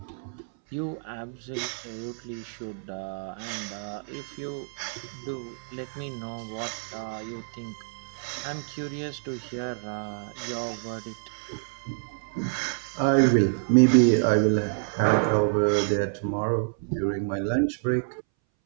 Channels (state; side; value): silent; left; 59 dB below the other